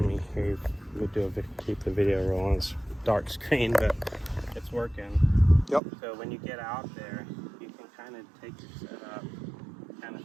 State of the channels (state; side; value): drops out; left; at 5.8 s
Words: me keep the video rolling. It's dark screen, but it's working. Yep. So when you get out there, you can kind of take your setup, kind of